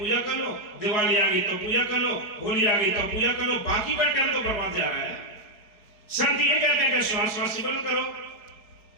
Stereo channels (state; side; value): late; right; 4.7 ms